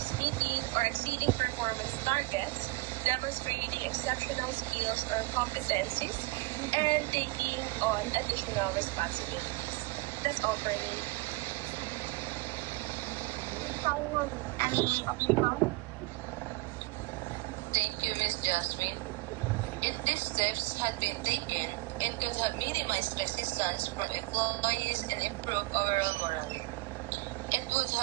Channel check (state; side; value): quieter; left; 23.8 dB